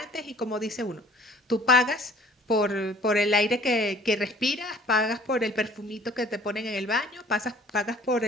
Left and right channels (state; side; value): normal; both; correlation 0.53